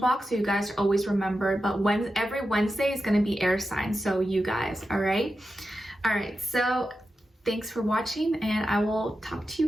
so you guys are always remembered. But every Wednesday is going to be air signs, so you guys, all right? All right, so thanks for watching, and I will talk to you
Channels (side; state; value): both; normal; correlation 0.90